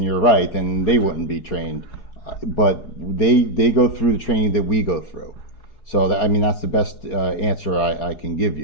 you're right, then they wouldn't be trained. But they go through the training that we go through. So that's the best answer I can give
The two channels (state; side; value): late; right; 4.8 ms